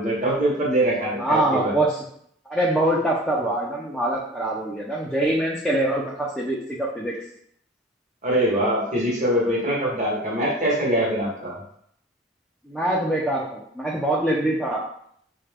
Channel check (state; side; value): normal; both; correlation 0.40